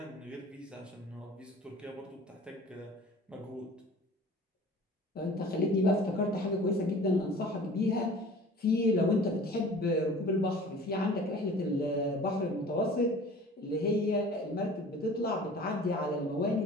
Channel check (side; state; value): both; normal; correlation 0.44